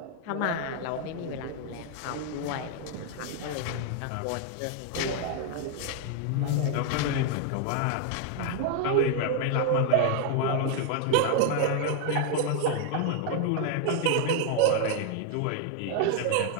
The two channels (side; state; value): both; different; correlation 0.00